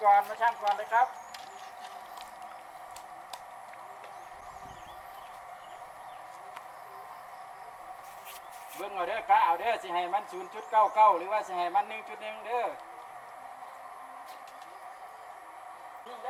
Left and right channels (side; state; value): both; identical; correlation 1.00